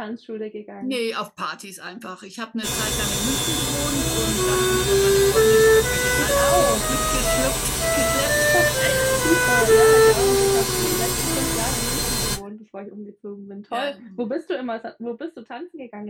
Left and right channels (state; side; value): identical; both; correlation 1.00